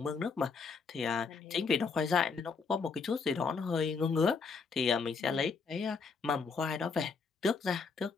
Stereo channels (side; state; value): right; quieter; 5.0 dB